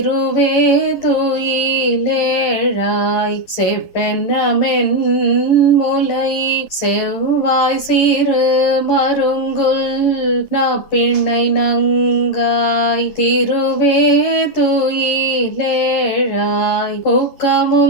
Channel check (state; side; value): late; right; 11 ms